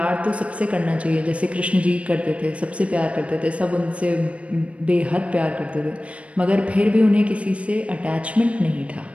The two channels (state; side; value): late; left; 0.063 ms